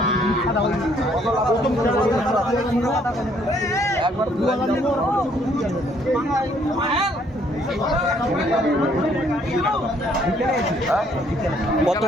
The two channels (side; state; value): both; normal; correlation 0.65